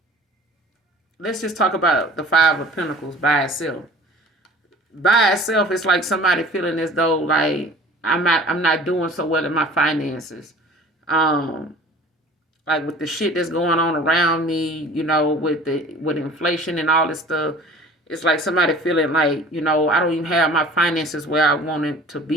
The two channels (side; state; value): both; normal; correlation 0.45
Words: let's just talk about the Five of Pentacles by itself. By itself, it's like somebody feeling as though, like, I'm not doing so well in my finances. Like with the shit that's going on around me, with inflation and all this stuff. It's like somebody feeling like, I don't even have my finances where I want it to